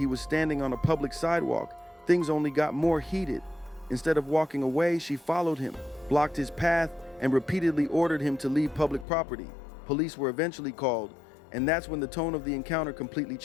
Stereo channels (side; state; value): right; drops out; at 9.1 s